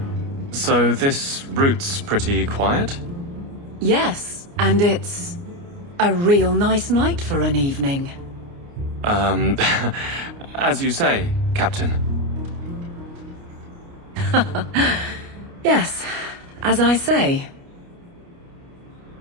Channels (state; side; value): late; left; 29 ms